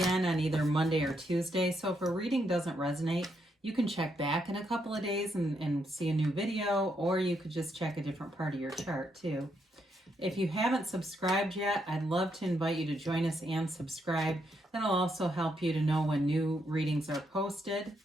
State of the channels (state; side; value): normal; both; correlation 0.78